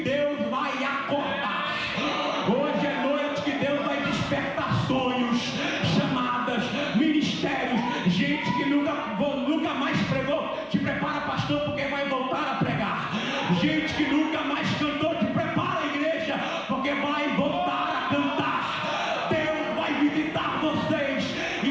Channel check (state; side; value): identical; both; correlation 1.00